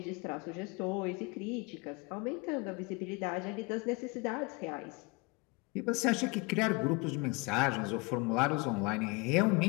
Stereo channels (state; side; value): quieter; right; 27.7 dB